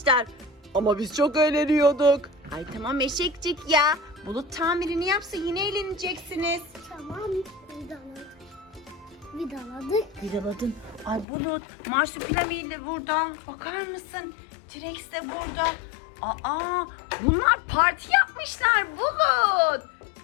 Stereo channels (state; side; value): drops out; right; at 11.2 s